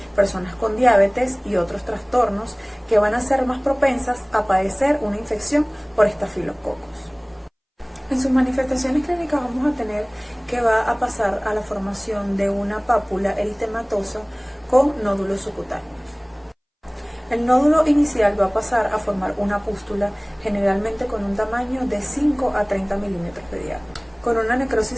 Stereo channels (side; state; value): both; identical; correlation 1.00